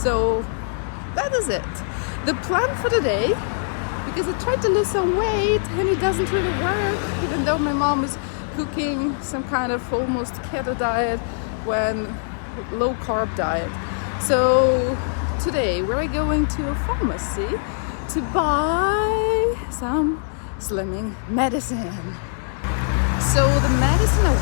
that is it. The plan for today, because I tried to lose some weight and it doesn't really work, even though my mom is cooking some kind of almost keto diet, when low carb diet. So today we're going to a pharmacy to buy some slimming medicine. So the medicine I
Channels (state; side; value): silent; right; 64 dB below the other